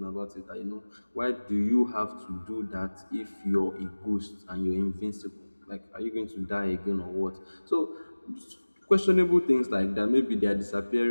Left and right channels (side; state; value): both; inverted; correlation -1.00